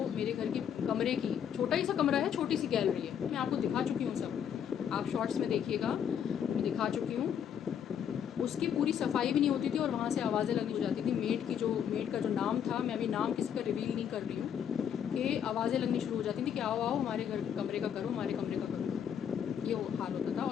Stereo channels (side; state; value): right; quieter; 8.6 dB